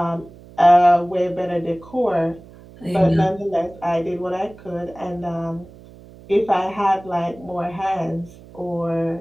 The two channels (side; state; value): right; noise; hum, 21 dB below the sound